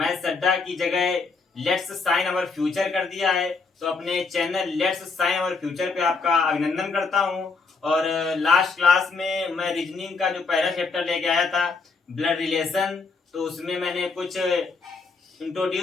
अड्डा की जगह लेट्स साइन अवर फ्यूचर कर दिया है। तो अपने channel let's sign our future पे आपका अभिनंदन करता हूं। और लास्ट क्लास में मैं रीजनिंग का जो पहला चैप्टर लेके आया था, ब्लड रिलेशन, तो उसमें मैंने कुछ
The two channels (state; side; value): quieter; right; 4.4 dB